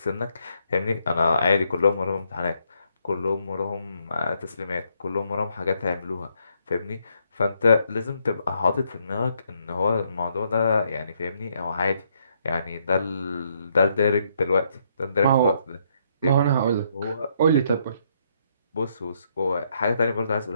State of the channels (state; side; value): inverted; both; correlation -0.73